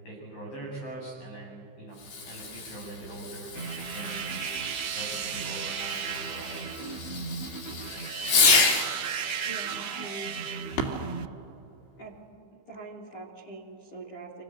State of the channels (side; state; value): right; late; 15 ms